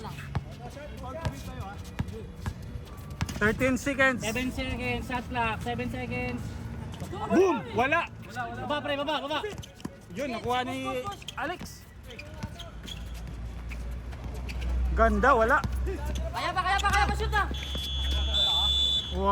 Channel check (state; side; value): identical; both; correlation 1.00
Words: lang. 13 seconds. 7 seconds, shot clock, 7 seconds. Boom! Wala. Baba pre, baba. Yun, nakuha ni Alex. Ganda, wala. Kaya pa, shoot na!